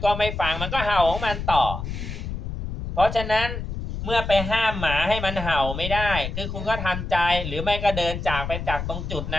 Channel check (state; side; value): noise; left; rumble, 5 dB below the sound